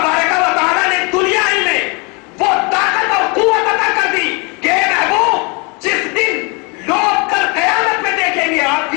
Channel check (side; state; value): right; quieter; 30.9 dB